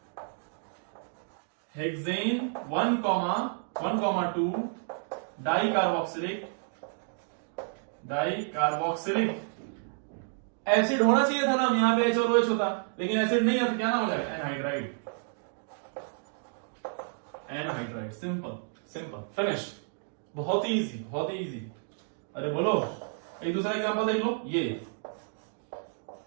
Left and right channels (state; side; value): silent; left; 57 dB below the other